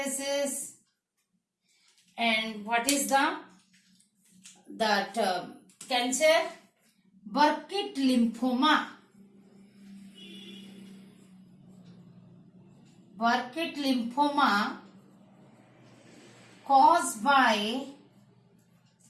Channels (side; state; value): both; identical; correlation 1.00